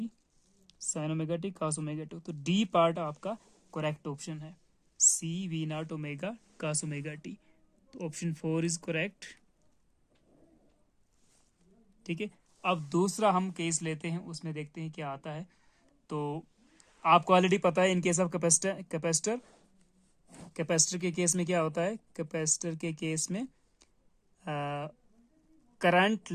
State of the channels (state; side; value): identical; both; correlation 1.00